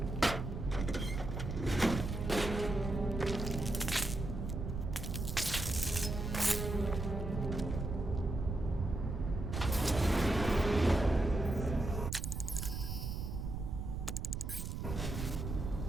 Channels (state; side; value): noise; right; rumble, 4 dB below the sound